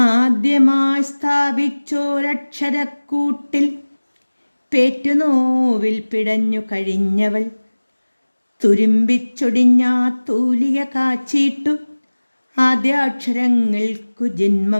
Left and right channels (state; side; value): inverted; both; correlation -1.00